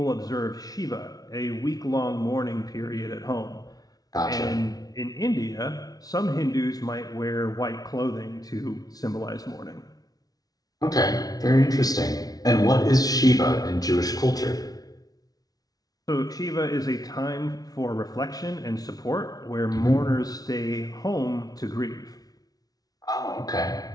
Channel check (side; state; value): right; late; 0.18 ms